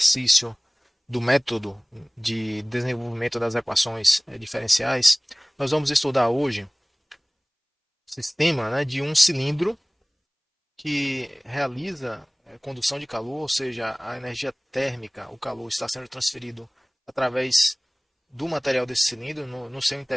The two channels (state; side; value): identical; both; correlation 1.00